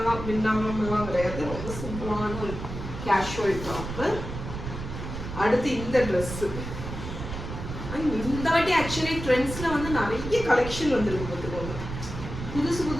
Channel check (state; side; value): noise; right; rumble, 8 dB below the sound